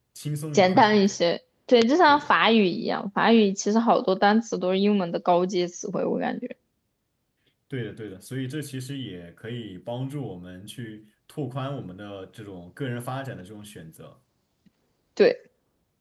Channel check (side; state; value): both; identical; correlation 1.00